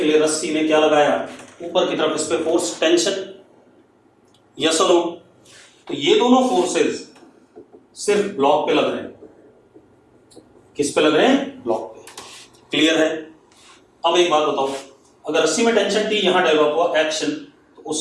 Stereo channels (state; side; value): identical; both; correlation 1.00